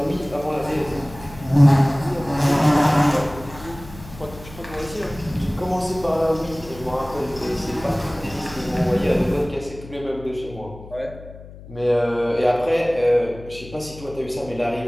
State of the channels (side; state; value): left; noise; hum, 17 dB below the sound